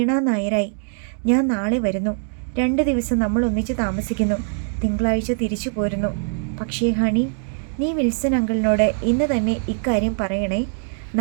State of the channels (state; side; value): silent; left; digital silence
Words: നായരായി ഞാൻ നാളെ വരുന്നു. 2 ദിവസം നമ്മൾ ഒന്നിച്ച് താമസിക്കുന്നു. തിങ്കളാഴ്ച തിരിച്ചു പോരുന്നു. പക്ഷേ ഹണി, നീ വിൽസൺ അങ്കിളിനോട് ഇന്ന് തന്നെ ഇക്കാര്യം പറയണേ.